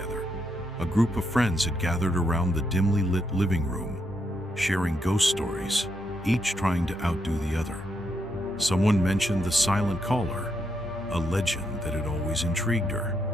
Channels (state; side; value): normal; both; correlation 0.80